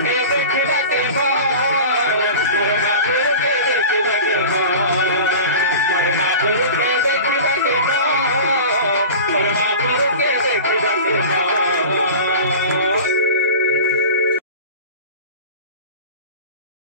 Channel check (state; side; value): inverted; both; correlation -0.35